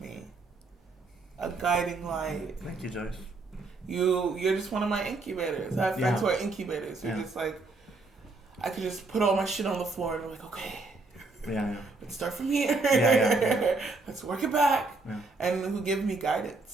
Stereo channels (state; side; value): quieter; left; 3.5 dB